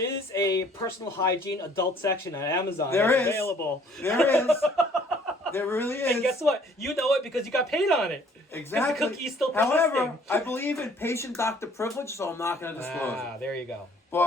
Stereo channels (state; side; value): normal; both; correlation 0.58